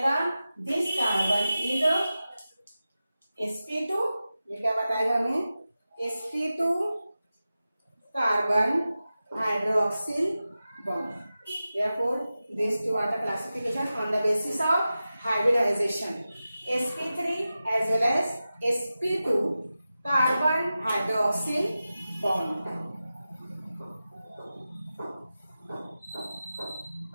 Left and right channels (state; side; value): inverted; both; correlation -0.94